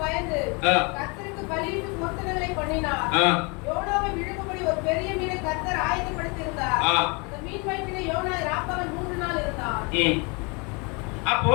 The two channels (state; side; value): quieter; right; 30.8 dB